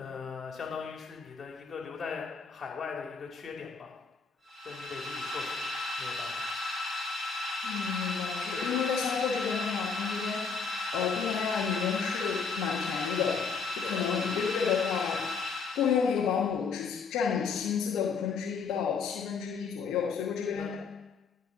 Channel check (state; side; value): quieter; right; 5.3 dB